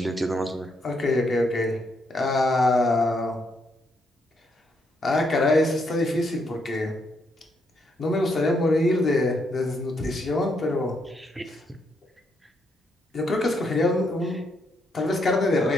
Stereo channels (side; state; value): both; normal; correlation 0.76